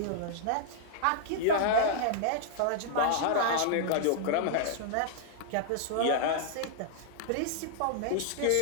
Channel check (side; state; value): both; different; correlation -0.01